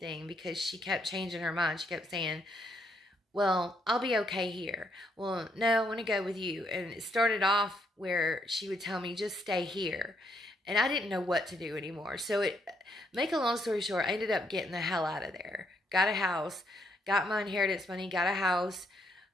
because she kept changing her mind. She kept saying, well, I'll be okay here. Well, no, I want to go with you. And it started off where she would tell me, just stay here. And I didn't know what to do anymore. So make a long story short, I ended up getting the hell out of there. Got a house, got my inheritance money, got a house,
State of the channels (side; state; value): both; normal; correlation 0.74